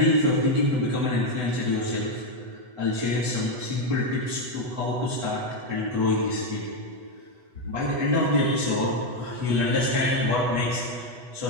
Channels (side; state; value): left; late; 8.1 ms